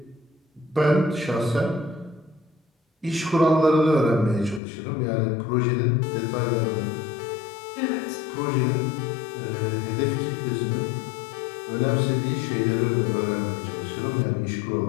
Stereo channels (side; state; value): right; drops out; at 4.6 s